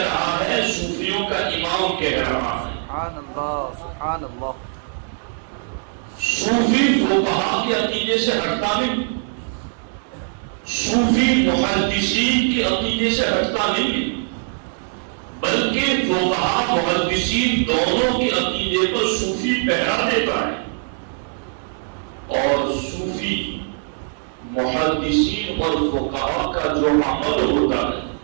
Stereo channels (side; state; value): left; silent; digital silence